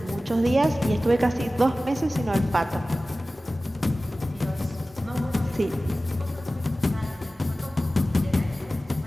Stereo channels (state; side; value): normal; both; correlation 0.96